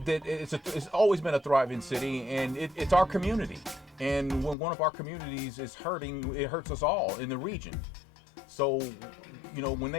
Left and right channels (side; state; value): right; drops out; at 4.5 s